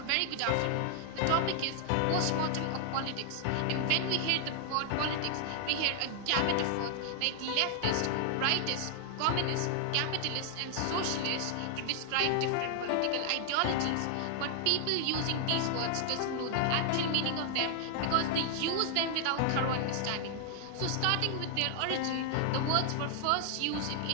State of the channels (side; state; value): both; different; correlation 0.00